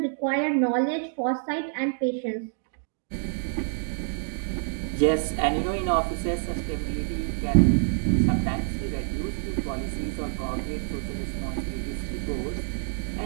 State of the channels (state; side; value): silent; left; digital silence